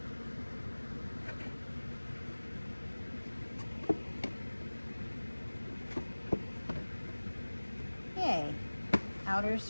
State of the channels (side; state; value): both; inverted; correlation -1.00